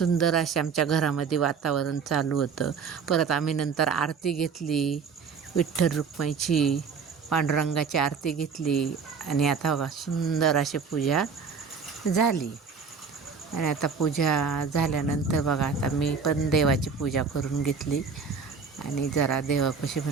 असे आमच्या घरामध्ये वातावरण चालू होतं. परत आम्ही नंतर आरती घेतली, विठ्ठल रुक्माईची पांडुरंगाची आरती घेतली. आणि आता बघा सुंदर अशी पूजा झाली. आणि आता पूजा झाल्यानंतर बघा आता मी पण देवाची पूजा करून घेतली. आणि जरा देवापाशी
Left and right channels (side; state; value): left; quieter; 5.7 dB